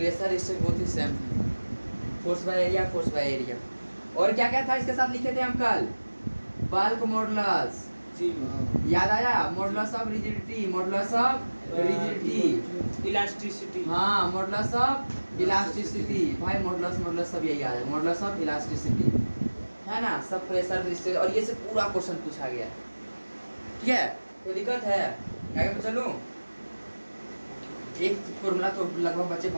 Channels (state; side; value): inverted; both; correlation -1.00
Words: स्ट्रेस बहुत ही सेम है, force by area, force by area. और क्या क्या था इसके साथ लिखे थे हम कल, बल्क मॉडुलस, जी, याद आया, modulus of rigidity, modulus of rigidity, elasticity, हाँ मॉडुलस ऑफ इलास्टिसिटी, भाई मॉडुलस सब यही आ है, मॉडुलस ऑफ इलास्टिसिटी, है ना। सब प्रेशर स्ट्रेस, और ये से पूरा क्वेश्चन पूछा गया, ठीक है। कोई दिक्कत है, आगे चलूं। एक फॉर्मूला तो लगभग बच्चे